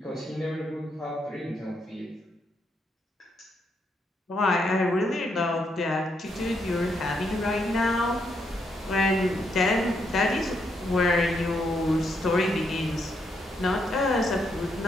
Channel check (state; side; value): normal; both; correlation 0.78